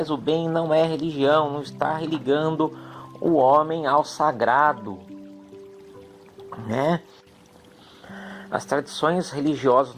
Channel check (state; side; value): identical; both; correlation 1.00